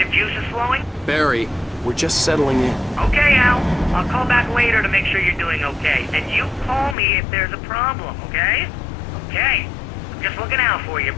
juices flowing? Barry, we're just settling in. Okay, Al. I'll call back later to make sure you're doing okay. And you call me if there's a problem, okay? Okay. I'm just looking out for you,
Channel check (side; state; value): right; drops out; at 7.0 s